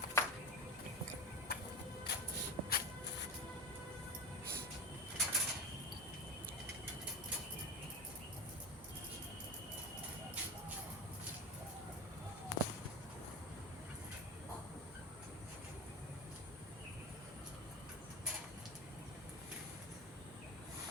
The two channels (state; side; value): normal; both; correlation 0.26